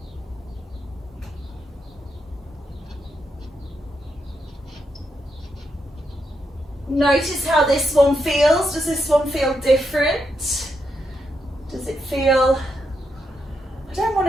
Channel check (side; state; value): both; normal; correlation 0.82